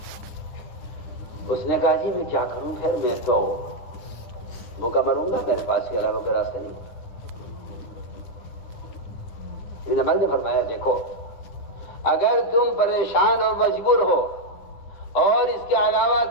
اس نے کہا جی میں کیا کروں، خیر میں تو بھوکا مروں گا، میرے پاس کے علاوہ کوئی راستہ نہیں۔ ابن عباس نے فرمایا دیکھو، اگر تم پریشان اور مجبور ہو اور اس کے علاوہ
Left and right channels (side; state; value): right; late; 10 ms